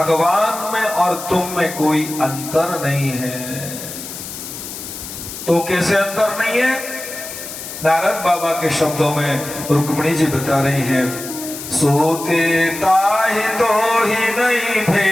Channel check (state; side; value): noise; left; hiss, 10 dB below the sound